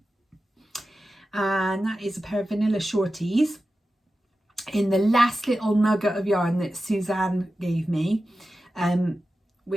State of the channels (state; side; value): normal; both; correlation 0.93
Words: And that is a pair of vanilla shorties in the last little nugget of yarn that Suzanne gave me,